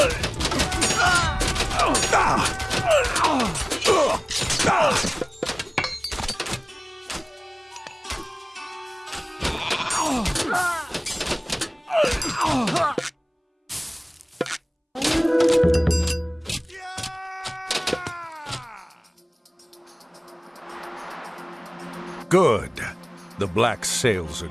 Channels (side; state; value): both; identical; correlation 1.00